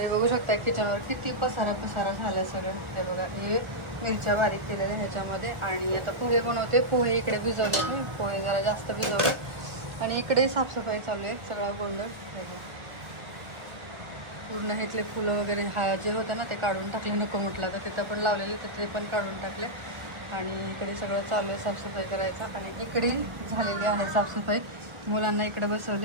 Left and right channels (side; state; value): left; late; 1.2 ms